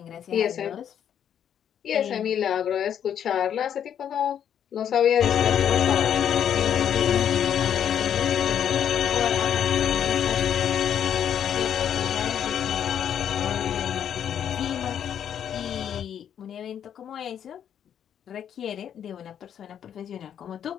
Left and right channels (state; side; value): quieter; right; 9.1 dB